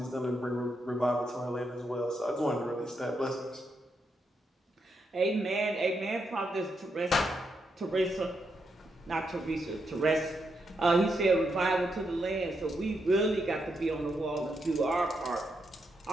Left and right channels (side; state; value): both; normal; correlation 0.82